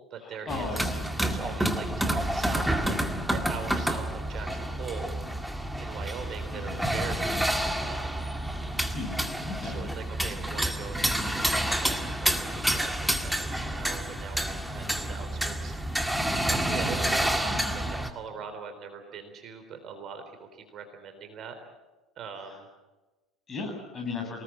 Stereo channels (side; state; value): both; normal; correlation 0.85